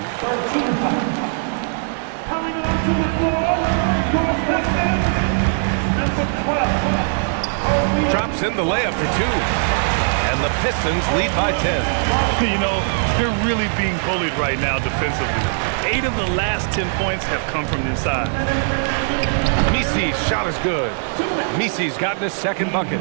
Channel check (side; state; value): left; silent; digital silence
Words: Coming onto the floor, your Pistons, number 12. Drops in the layup for 2. And the Pistons lead by 10. You know, they're really being bullied right now defensively. 8 of the last 10 points have come from inside. Messi's shot is good. Messi's gotten his second bucket.